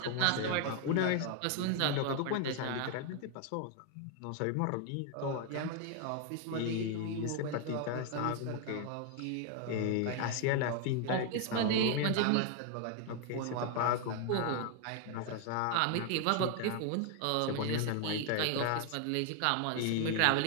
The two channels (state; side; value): different; both; correlation 0.00